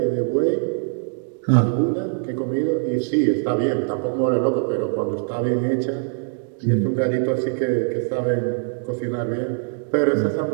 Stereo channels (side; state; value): left; silent; 64 dB below the other